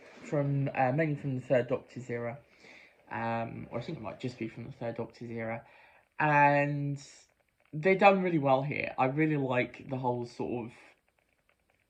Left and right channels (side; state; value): both; identical; correlation 1.00